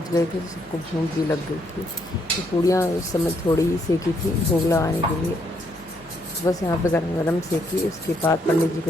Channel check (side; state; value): both; normal; correlation 0.73